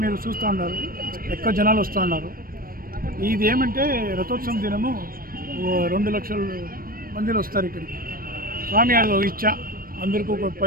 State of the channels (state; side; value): late; left; 0.42 ms